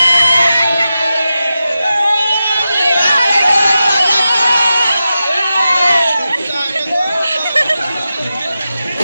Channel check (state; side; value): inverted; both; correlation -0.91